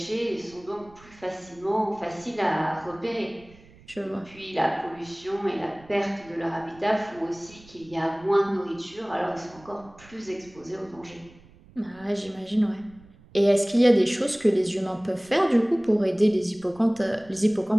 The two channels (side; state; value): right; noise; rumble, 25 dB below the sound